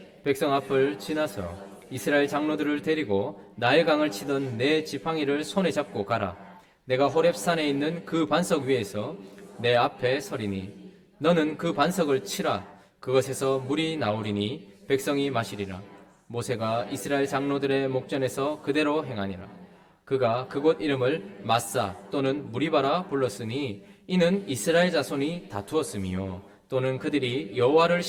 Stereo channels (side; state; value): both; identical; correlation 1.00